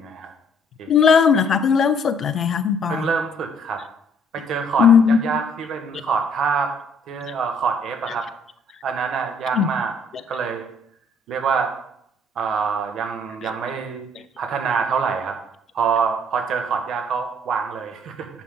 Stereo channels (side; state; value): both; normal; correlation 0.62